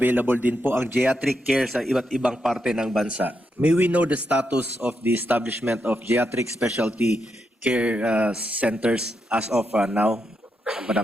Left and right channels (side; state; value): both; normal; correlation 0.83